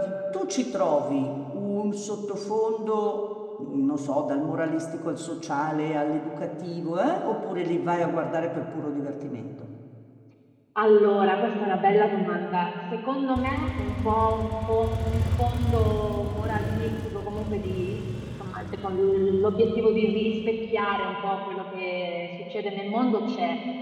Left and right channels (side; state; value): both; identical; correlation 1.00